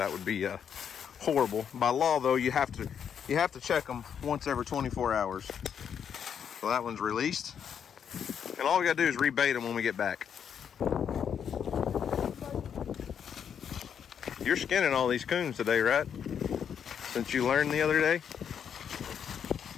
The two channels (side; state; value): right; quieter; 7.9 dB